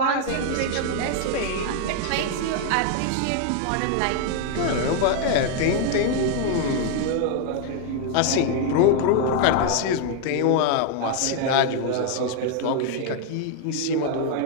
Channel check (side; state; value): both; different; correlation 0.00